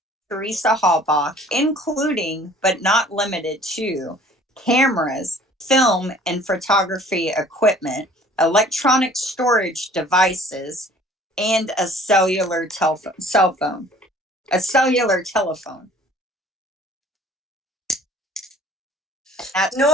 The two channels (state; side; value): normal; both; correlation 0.52